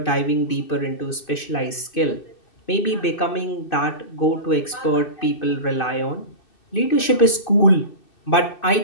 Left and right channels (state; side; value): late; right; 2.6 ms